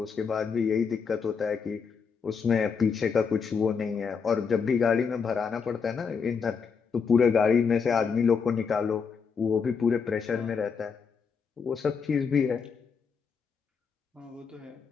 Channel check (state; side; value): quieter; right; 5.9 dB